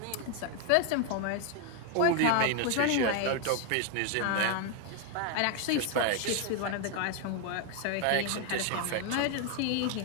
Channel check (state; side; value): different; both; correlation 0.01